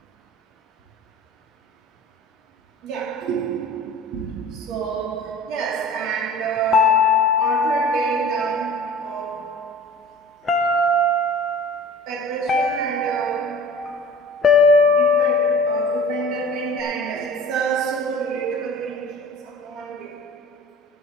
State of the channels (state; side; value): normal; both; correlation 0.42